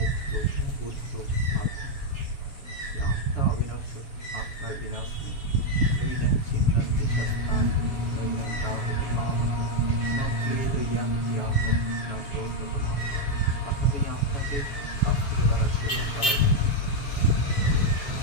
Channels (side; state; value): right; late; 7.2 ms